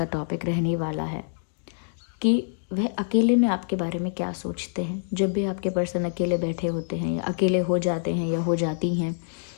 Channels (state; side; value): silent; right; digital silence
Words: टॉपिक रहने वाला है कि वह अकेले में आपके बारे में क्या सोचते हैं। जब भी आपके पर्सन अकेले बैठे होते हैं या अकेले हो जाते हैं या हो जाती हैं,